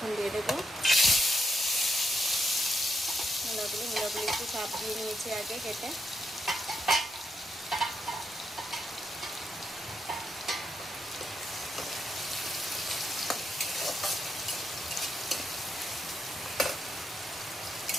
দিয়ে দেবো মূলাগুলো একটু চাপ দিয়ে নিয়েছি আগে কেটে।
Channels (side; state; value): both; normal; correlation 0.80